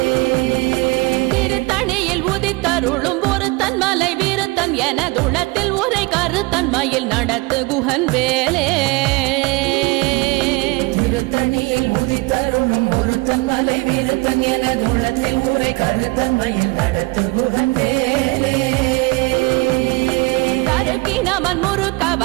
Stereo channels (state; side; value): quieter; left; 24.3 dB